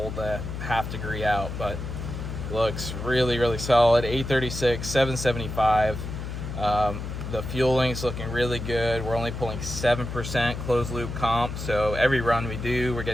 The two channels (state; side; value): noise; left; hum, 6 dB below the sound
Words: the half degree out, but looks really, really solid. 836, 775. The fueling's looking really good. We're only pulling 7% closed loop comp, so every run we do, we're